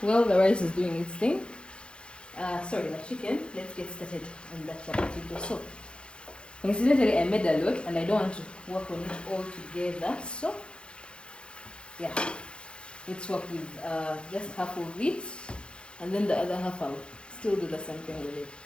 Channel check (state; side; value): late; right; 0.055 ms